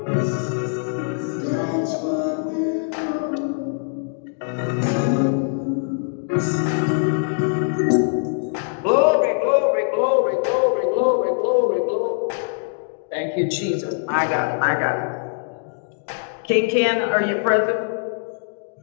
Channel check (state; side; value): silent; right; digital silence